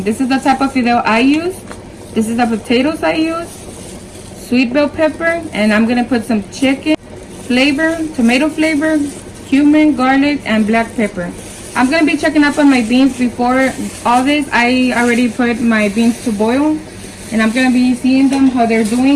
This is the type of fideo I use. This is the potatoes I use, sweet bell pepper, and I'm going to put some chicken flavor, tomato flavor, cumin, garlic, and black pepper. I'm going to be checking up on my beans before all this. I already put my beans to boil, and I'm going to be seeing them, how they're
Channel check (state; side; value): identical; both; correlation 1.00